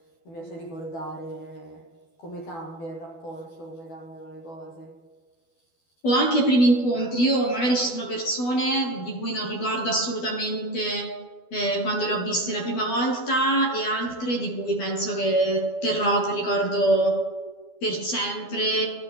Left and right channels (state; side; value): late; right; 12 ms